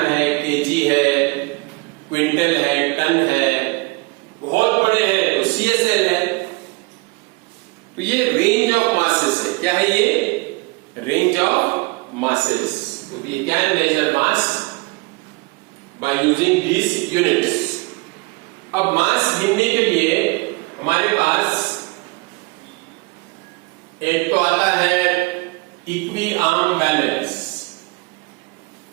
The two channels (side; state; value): left; quieter; 26.4 dB